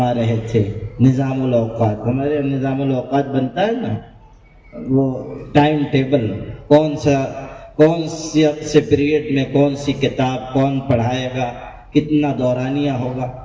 رہے تھے نظام الاوقات۔ ہمارے نظام الاوقات بنتا ہے نا، وہ ٹائم ٹیبل، کون سے پیریڈ میں کون سی کتاب کون پڑھائے گا، کتنا دورانیہ ہوگا،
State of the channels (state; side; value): identical; both; correlation 1.00